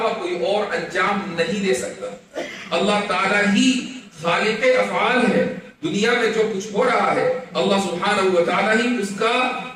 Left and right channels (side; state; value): both; identical; correlation 1.00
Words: کوئی اور انجام نہیں دے سکتا۔ اللہ تعالیٰ ہی خالق افعال ہے، دنیا میں جو کچھ ہو رہا ہے اللہ سبحانہ و تعالیٰ ہی اس کا